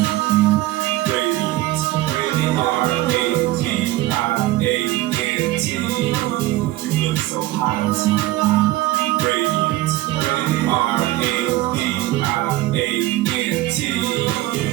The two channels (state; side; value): quieter; left; 16.9 dB